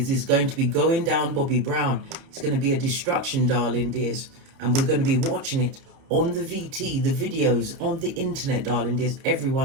is going to be going down Bobby Brown. It's going to be a destruction, darling dears. And we're going to be watching it on the VT, the videos, on the internet, darling dears.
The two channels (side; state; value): left; late; 30 ms